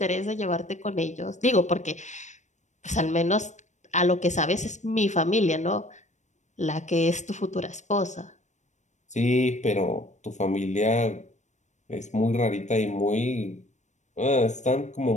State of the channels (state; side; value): late; right; 0.34 ms